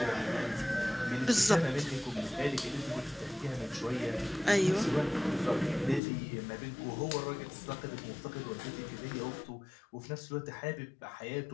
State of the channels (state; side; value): drops out; right; at 6.0 s